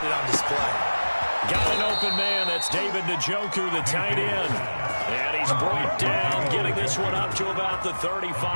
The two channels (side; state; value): both; inverted; correlation -1.00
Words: it on display. Got an open man. That's David Njoku, the tight end. And he's brought down, getting this one up to about the